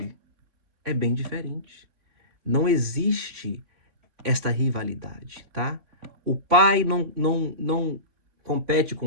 é bem diferente. Não existe esta rivalidade, tá? O pai não compete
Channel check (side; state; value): left; late; 3.5 ms